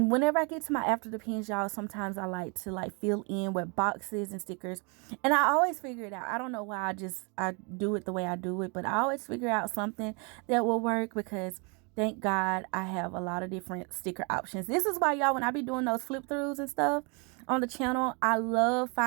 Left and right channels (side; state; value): left; quieter; 33.2 dB